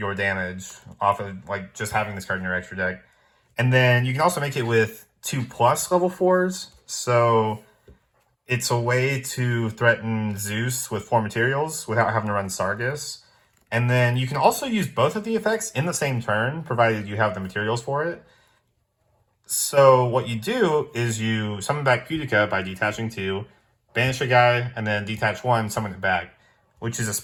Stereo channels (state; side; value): identical; both; correlation 1.00